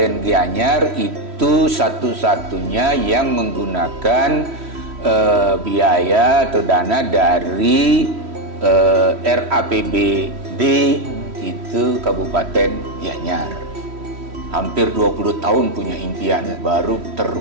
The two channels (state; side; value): late; left; 3.1 ms